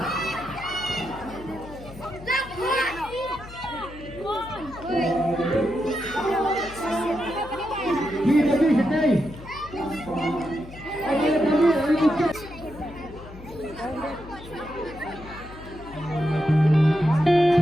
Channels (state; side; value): noise; left; hum, 16 dB below the sound